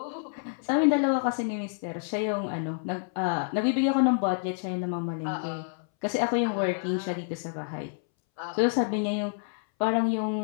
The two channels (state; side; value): silent; right; 59 dB below the other